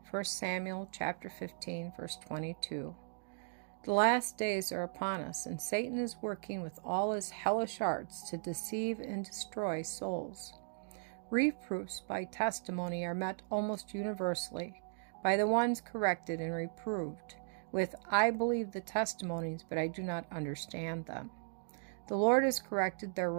1 Samuel chapter 15, verse 22. The last days are upon us, and Satan is working with all his hellish arts to deceive and destroy souls. Reproofs by testimony are met almost universally by the ones corrected and reproved with, "I believe the testimonies, but I do not understand them." The Lord has corrected their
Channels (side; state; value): left; silent; digital silence